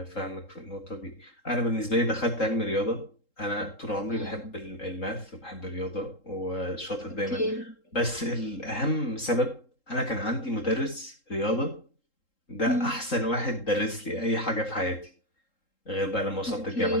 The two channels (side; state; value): right; late; 3.7 ms